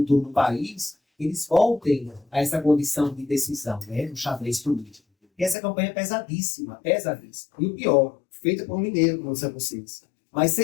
do país, eles voltem a essa condição de decisão, né, no xadrez político. E essa campanha é pesadíssima, pesadíssima. E o pior, feita por um mineiro, como disseram vocês. Mas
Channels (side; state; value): right; drops out; at 5.6 s